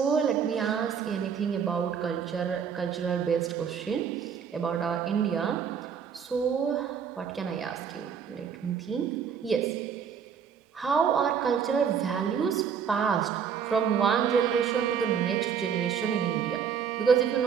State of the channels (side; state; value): left; quieter; 7.3 dB